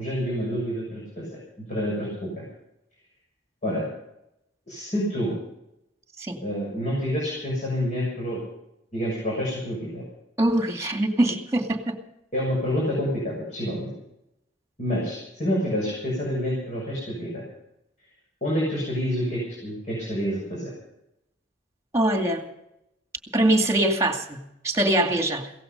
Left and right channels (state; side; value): normal; both; correlation 0.55